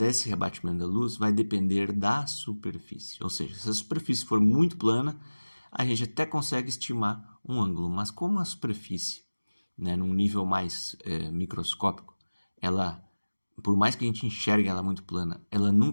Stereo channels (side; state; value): both; inverted; correlation -1.00